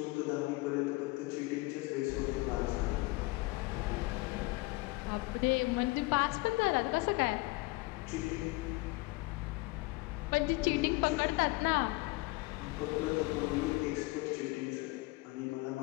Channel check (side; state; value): right; quieter; 23.5 dB